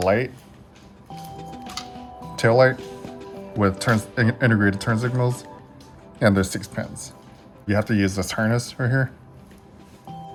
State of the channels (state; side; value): identical; both; correlation 1.00